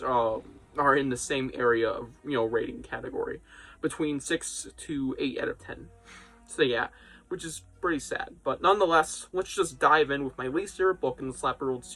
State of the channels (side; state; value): both; identical; correlation 1.00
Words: are in the same area of, rating category. Between 6 to 8 out of 10. So, yeah. Which is pretty sad. But nonetheless, let's just dive in with my least favorite book in the SlappyWorld